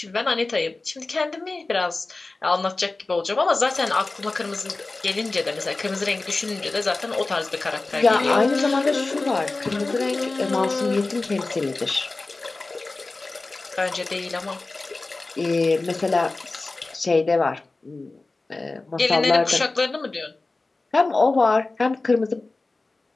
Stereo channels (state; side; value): quieter; right; 3.4 dB